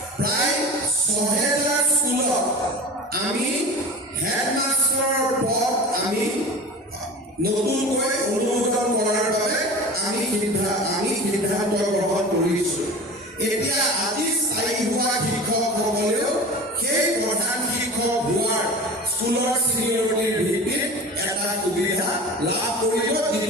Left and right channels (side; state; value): both; normal; correlation 0.36